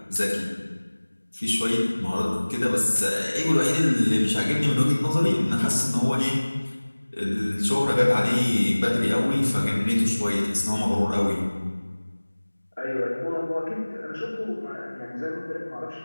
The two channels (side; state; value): both; inverted; correlation -1.00